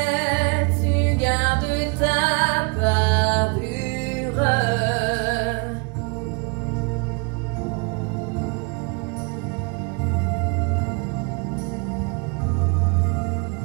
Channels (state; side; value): quieter; left; 32.2 dB